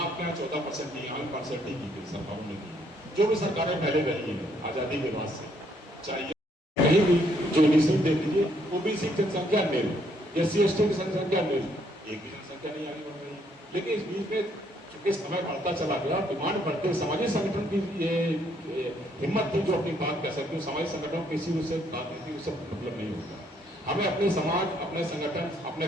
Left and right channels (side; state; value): both; normal; correlation 0.69